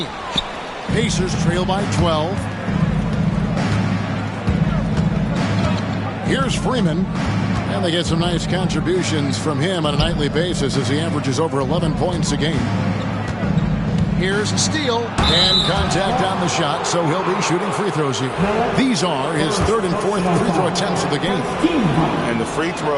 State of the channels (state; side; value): identical; both; correlation 1.00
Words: Pacers trail by 12. Here's Freeman. And they get some nice contributions from him on a nightly basis as he averages over 11 points a game. Here's a steal and contact on the shot, so he'll be shooting free throws here. These are his third and fourth free throw attempts of the game. And the free